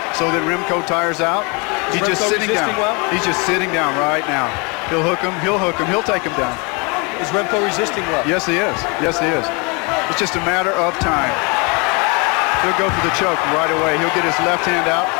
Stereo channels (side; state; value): right; quieter; 30.9 dB